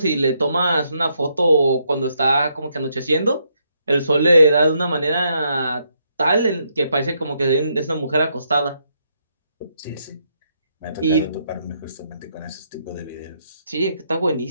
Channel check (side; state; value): both; inverted; correlation -0.76